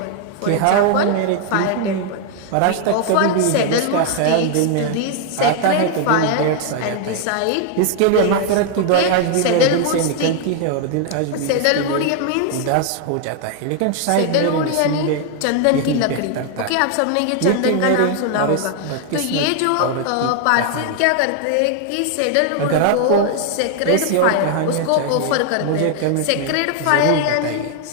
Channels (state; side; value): different; both; correlation 0.00